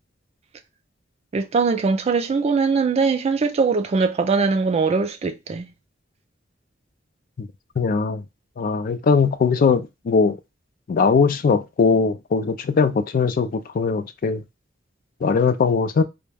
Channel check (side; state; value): both; normal; correlation 0.30